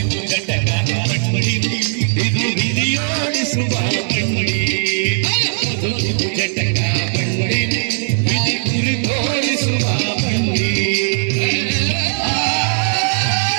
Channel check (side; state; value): left; silent; 68 dB below the other